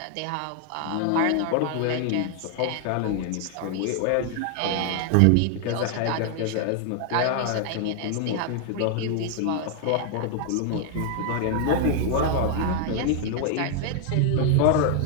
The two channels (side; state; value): both; different; correlation 0.00